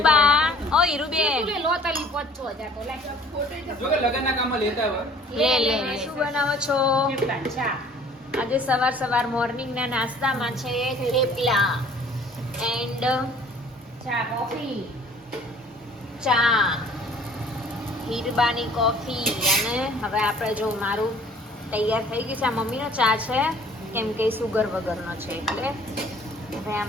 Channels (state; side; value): normal; both; correlation 0.53